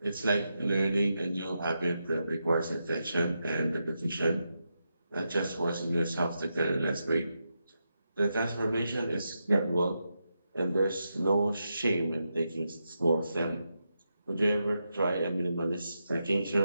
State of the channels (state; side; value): inverted; both; correlation -0.86